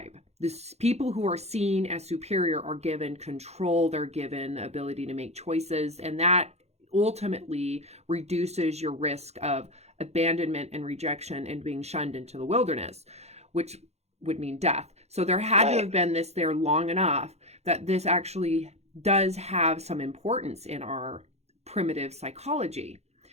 this people who are seen as superior are given control, they're given ability to make choices, and that ultimately reduces your risk of abandonment and rejection and being shunned into the wilderness, which would mean death. So there had to have been this there long enough that this actually does have some importance in our primitive psychology.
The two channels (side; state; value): left; late; 0.31 ms